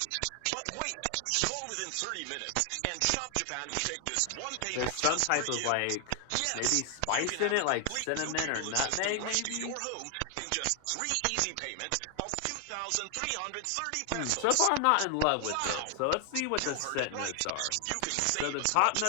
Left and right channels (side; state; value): both; different; correlation 0.00